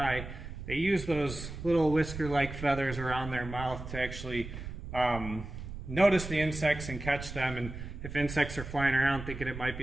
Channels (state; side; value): noise; right; rumble, 9 dB below the sound